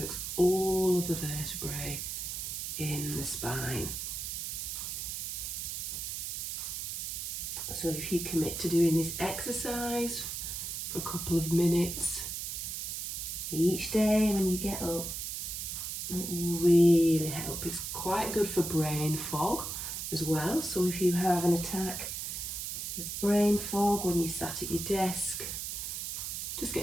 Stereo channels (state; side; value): noise; right; hiss, 4 dB below the sound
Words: all of the vertebrae in the spine. So if you commit to doing this exercise for a couple of minutes each day when you get up, it will really help. It's quite good for brain fog as well. So if you have an attack of brain fog when you sat at your desk, just